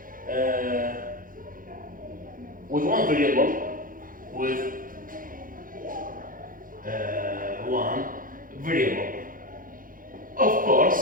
with one variable, of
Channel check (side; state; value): left; late; 0.40 ms